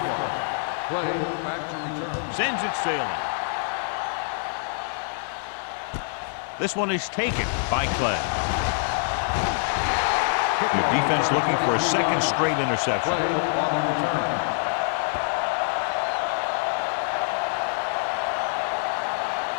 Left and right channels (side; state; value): right; silent; 55 dB below the other